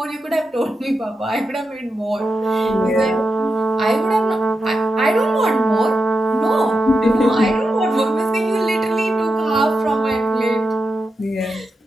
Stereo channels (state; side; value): normal; both; correlation 0.88